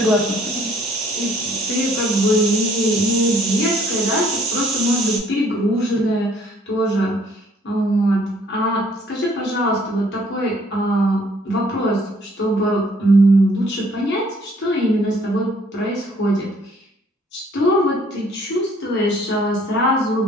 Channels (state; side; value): normal; both; correlation 0.61